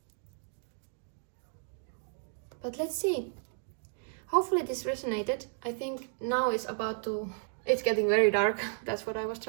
But let's see. Hopefully this resonated. I think now it's getting very dark. That's what I was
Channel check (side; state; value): left; silent; 56 dB below the other